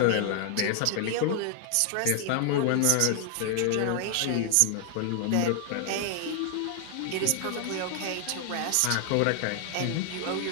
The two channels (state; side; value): different; both; correlation 0.00